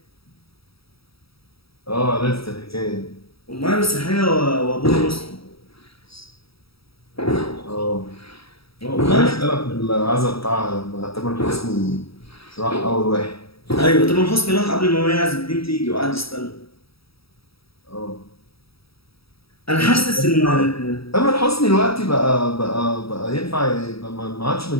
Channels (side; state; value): right; late; 0.76 ms